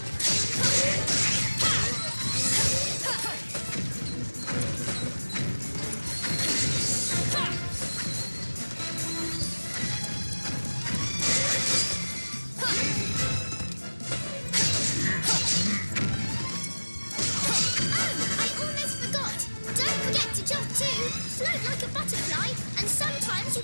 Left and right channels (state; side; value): inverted; both; correlation -1.00